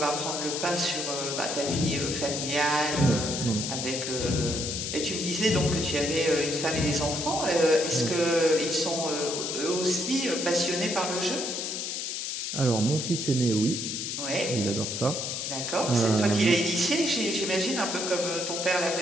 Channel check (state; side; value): noise; left; hiss, 3 dB below the sound